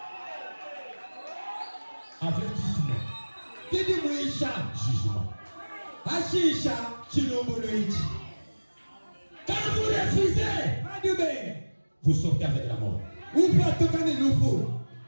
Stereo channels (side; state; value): both; inverted; correlation -1.00